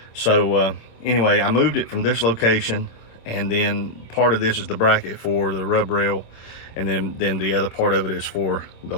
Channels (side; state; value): right; late; 27 ms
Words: so anyway, I moved it from this location, and then part of this is the bracket for the rub rail, and then the other part of it is for the